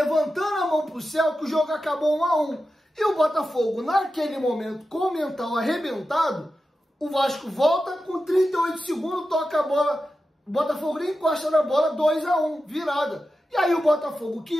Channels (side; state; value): both; normal; correlation 0.92